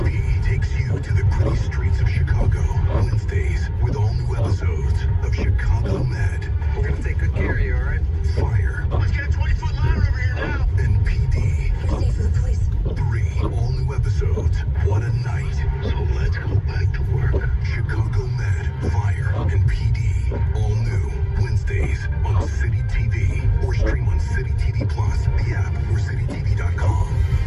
takes you to the gritty streets of Chicago. Wednesdays with all new episodes of Chicago Med. We're gonna take good care of you, all right? Fire. Let's get a 20-foot ladder over here now. And PD. Stay for the police. 3 all new episodes. What a night. So let's go back to work. Chicago Med, Fire, and PD. All new Wednesdays on City TV. Or stream on City TV Plus, the app, or citytv.com.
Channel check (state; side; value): identical; both; correlation 1.00